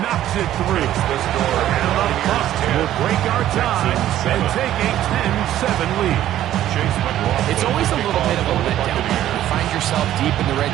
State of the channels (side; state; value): left; quieter; 12.6 dB